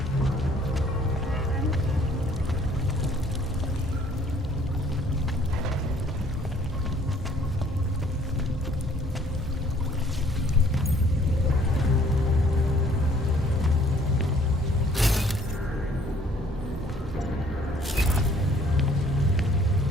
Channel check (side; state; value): both; normal; correlation 0.59